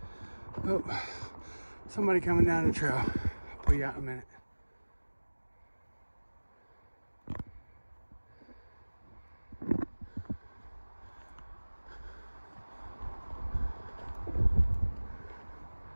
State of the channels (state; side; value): inverted; both; correlation -1.00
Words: Oh, somebody coming down the trail. I'll pull you out in a minute.